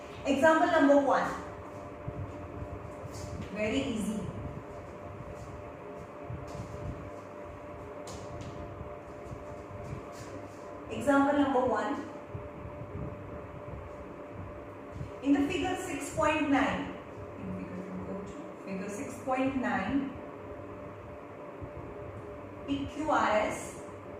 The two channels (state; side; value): identical; both; correlation 1.00